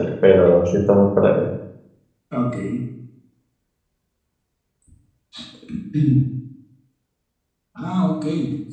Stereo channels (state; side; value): identical; both; correlation 1.00